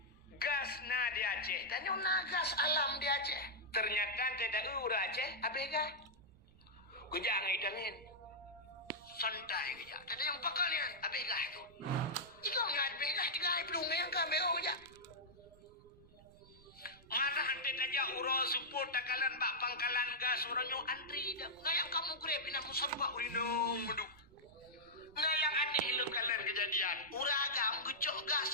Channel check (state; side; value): noise; right; rumble, 24 dB below the sound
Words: gas na di Aceh. Tanya na gas alam di Aceh. Ternyata tidak ura Aceh, abega. Kejak ngidangin. Santai kejak. Tadi yang pakalian, abega itu. Ikaw nga abega, tiga belum yang kami aja. Mana hante aja uro support takalan bak pangkalan gas orangnya antri dah. Ngayang kamu grab ina musabba urinong menduk. Ngayang aneh lu kalian kejadian. Uragam gecok gas